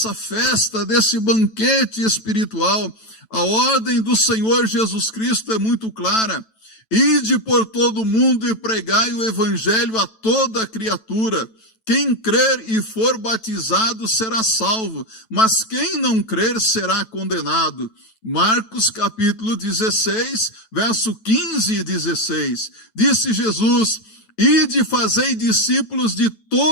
festa, desse banquete espiritual. A ordem do Senhor Jesus Cristo é muito clara. Ide por todo o mundo e pregai o evangelho a toda criatura. Quem crer e for batizado será salvo, mas quem não crer será condenado. Marcos capítulo 16, verso 15 e 16. Disse Jesus: ide fazei discípulos de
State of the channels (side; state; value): right; late; 9.1 ms